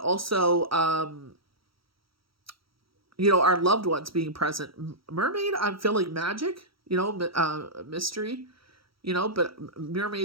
our loved ones being present. Mermaid, I'm feeling magic, mystery. But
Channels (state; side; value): late; left; 0.75 ms